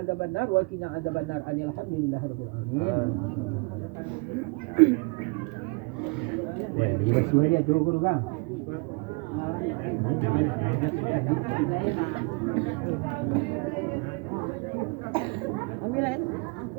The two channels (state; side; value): quieter; left; 30.6 dB